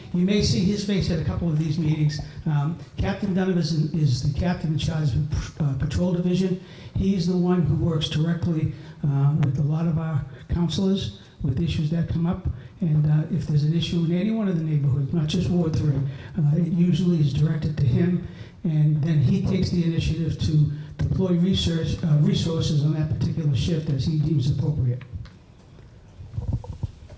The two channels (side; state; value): both; identical; correlation 1.00